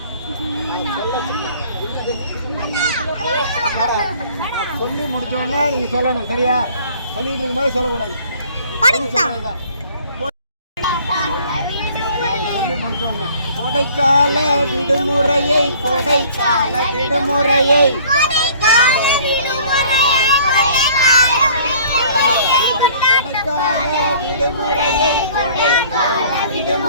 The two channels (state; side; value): inverted; both; correlation -0.52